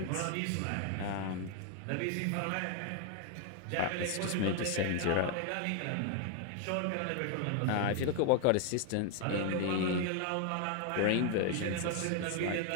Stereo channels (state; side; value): different; both; correlation 0.00